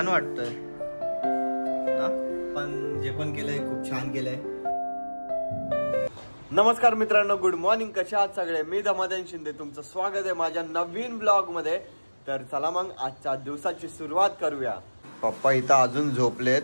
वाटतंय ना, पण जे पण केलंय खूप छान केलंय. नमस्कार मित्रांनो, गुड मॉर्निंग. कशा आहात सगळे? मी धमाधन शिंदे, तुमचं स्वागत आहे माझ्या नवीन ब्लॉग मध्ये. तर चला मग आजच्या दिवसाची सुरुवात करूया. पप्पा इथं अजून झोपलेत,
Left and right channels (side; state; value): both; inverted; correlation -1.00